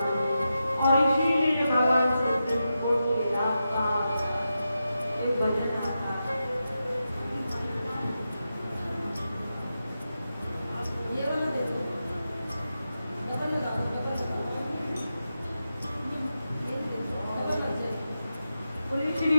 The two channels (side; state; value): both; inverted; correlation -0.89